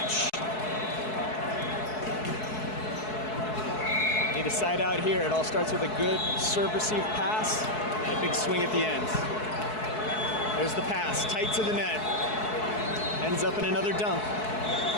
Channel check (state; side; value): late; right; 4.7 ms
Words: Need a side out here. It all starts with a good serve-receive pass and a big swing at the end. There's the pass, tight to the net. Ends up in another dump.